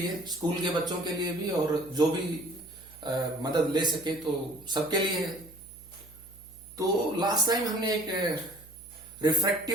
स्कूल के बच्चों के लिए भी और जो भी मदद ले सके तो सबके लिए है। तो लास्ट टाइम हमने एक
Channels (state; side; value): noise; right; hum, 23 dB below the sound